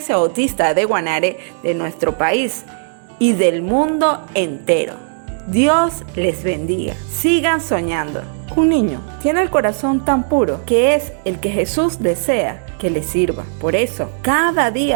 bautista de Guanare, de nuestro país y del mundo entero. Dios les bendiga. Sigan soñando. Un niño tiene el corazón tan puro que es el que Jesús desea que le sirva. Por eso, cada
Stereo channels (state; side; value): silent; left; digital silence